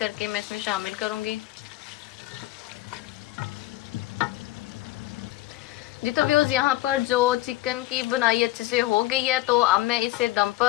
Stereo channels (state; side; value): quieter; right; 17.2 dB